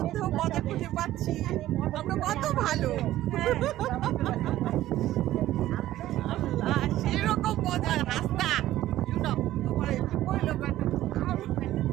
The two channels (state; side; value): quieter; left; 14.3 dB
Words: মজা খুঁজে পাচ্ছি, আমরা কত ভালো। সেরকম মজা রাস্তা